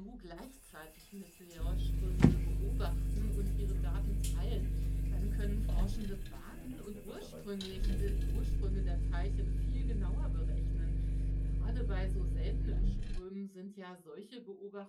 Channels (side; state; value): both; identical; correlation 1.00